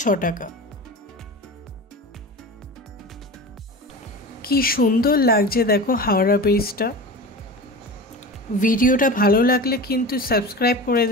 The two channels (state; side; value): normal; both; correlation 0.31